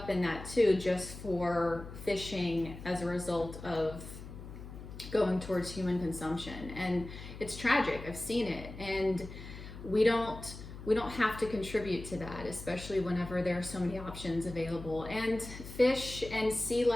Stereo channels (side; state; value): left; noise; hum, 12 dB below the sound